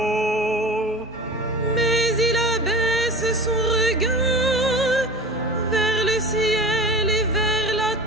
Mais il abaisse son regard vers le ciel et vers la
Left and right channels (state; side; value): normal; both; correlation 0.34